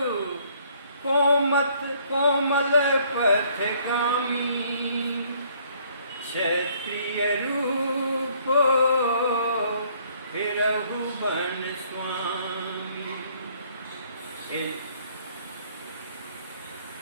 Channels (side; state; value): both; inverted; correlation -0.63